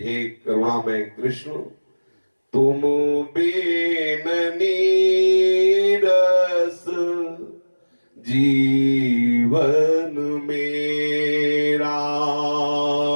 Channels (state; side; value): inverted; both; correlation -1.00